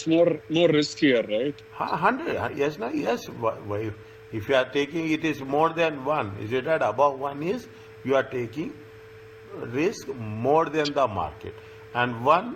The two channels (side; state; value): both; identical; correlation 1.00